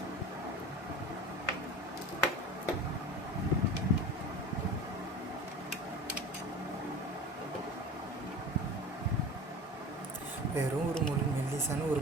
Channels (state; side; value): normal; both; correlation 0.35